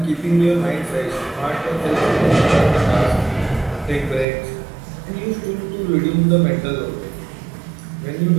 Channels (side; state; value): left; drops out; at 4.2 s